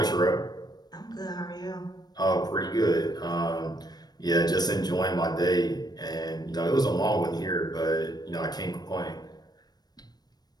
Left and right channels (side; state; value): right; late; 0.19 ms